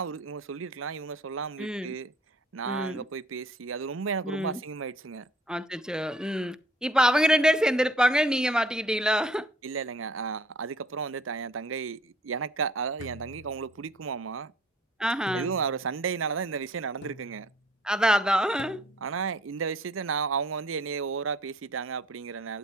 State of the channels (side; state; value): both; normal; correlation 0.56